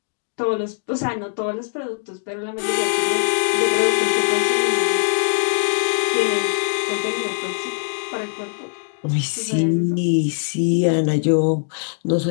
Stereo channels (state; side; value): silent; right; digital silence